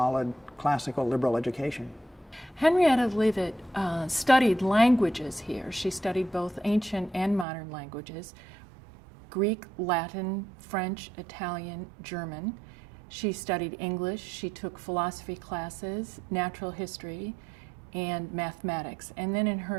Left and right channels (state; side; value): drops out; left; at 7.5 s